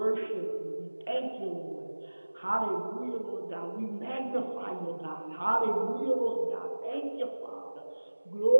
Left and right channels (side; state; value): both; inverted; correlation -1.00